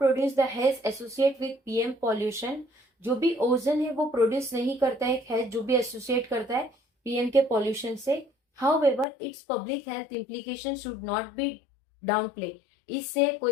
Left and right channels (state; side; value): drops out; right; at 9.1 s